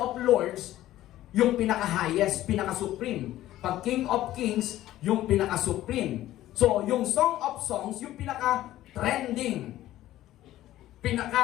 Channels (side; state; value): right; quieter; 14.3 dB